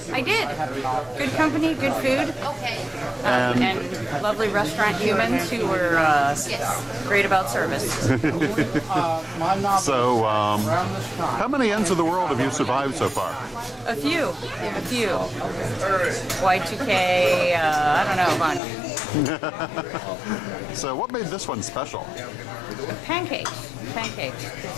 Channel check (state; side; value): drops out; right; at 18.6 s